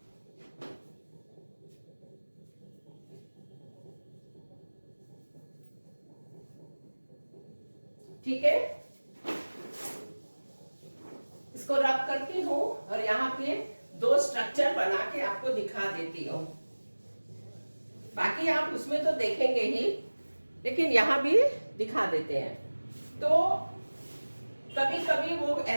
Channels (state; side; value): inverted; both; correlation -1.00